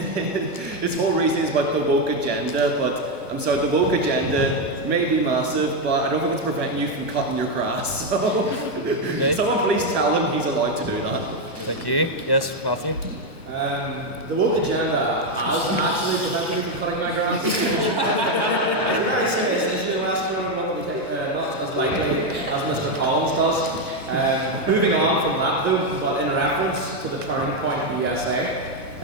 is about the woke agenda. But I'm sorry, the woke agenda may be massive, but I don't think it's preventing you from cutting your grass. So Okay. someone please tell him he's allowed to do that. Thank you. Yes, Matthew? The woke agenda has actually prevented me from cutting my grass. It's a very serious issue. The West Northern one we take not as lightly as Mr. Collins does. Moving on from that though, but in reference to the turning point in the USA,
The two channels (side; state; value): right; late; 1.1 ms